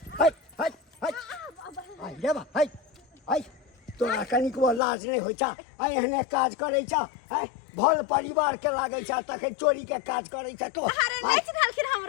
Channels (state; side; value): drops out; right; at 4.8 s